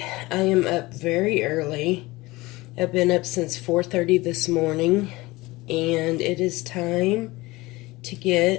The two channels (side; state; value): right; quieter; 21.0 dB